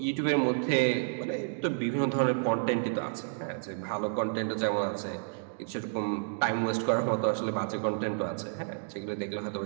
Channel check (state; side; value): silent; left; digital silence